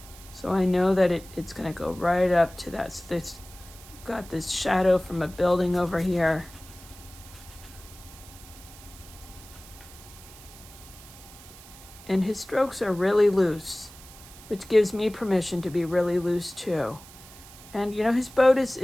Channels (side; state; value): right; noise; hiss, 19 dB below the sound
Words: So I know that it's going to go right up to that. So there's got this shadow from a building over here. And his strokes are really loose, which gives me permission to be really loose too. And you know, his boat is,